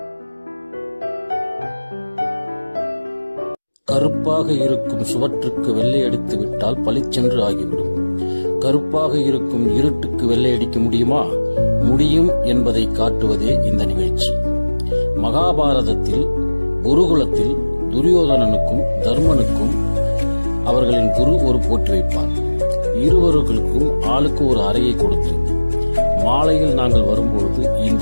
கருப்பாக இருக்கும் சுவற்றுக்கு வெள்ளை அடித்து விட்டால் பளிச்சென்று ஆகிவிடும். கருப்பாக இருக்கும் இருட்டுக்கு வெள்ளை அடிக்க முடியுமா? முடியும் என்பதை காட்டுவதே இந்த நிகழ்ச்சி. மகாபாரதத்தில் குருகுலத்தில் துரியோதனனுக்கும் தர்மனுக்கும் அவர்களின் குரு ஒரு போட்டி வைப்பார். இருவர்களுக்கும் ஆளுக்கு ஒரு அறையை கொடுத்து, மாலையில் நாங்கள் வரும்பொழுது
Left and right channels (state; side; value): inverted; both; correlation -1.00